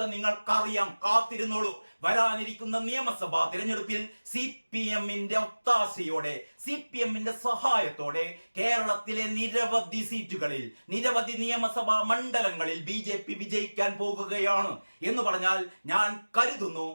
നിങ്ങൾക്കറിയാം, കാത്തിരുന്നോളൂ. വരാനിരിക്കുന്ന നിയമസഭാ തിരഞ്ഞെടുപ്പിൽ CPM-ന്റെ ഒത്താശയോടെ, CPM-ന്റെ സഹായത്തോടെ കേരളത്തിലെ നിരവധി സീറ്റുകളിൽ, നിരവധി നിയമസഭാ മണ്ഡലങ്ങളിൽ BJP വിജയിക്കാൻ പോകുകയാണ് എന്ന് പറഞ്ഞാൽ ഞാൻ കരുതുന്നു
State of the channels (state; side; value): inverted; both; correlation -1.00